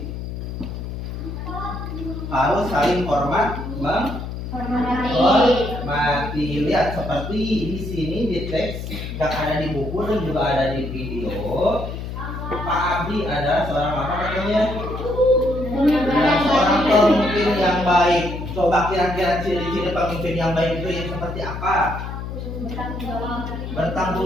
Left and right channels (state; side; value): noise; left; hum, 7 dB below the sound